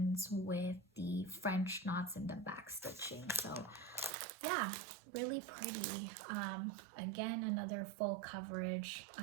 with the French knots and the back stitching. So yeah, really pretty. Again, another full coverage.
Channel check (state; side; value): drops out; left; at 4.1 s